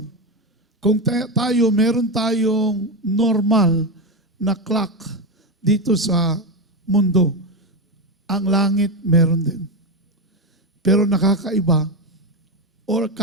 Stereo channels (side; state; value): both; normal; correlation 0.13